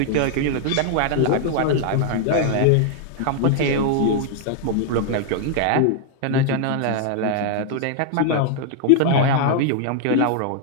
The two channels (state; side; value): different; both; correlation 0.00